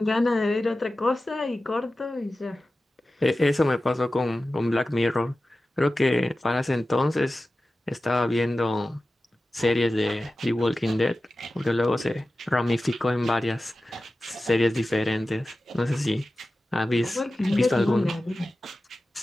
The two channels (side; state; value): both; normal; correlation 0.95